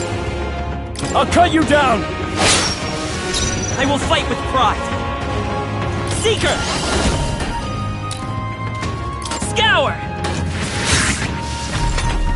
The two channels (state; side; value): identical; both; correlation 1.00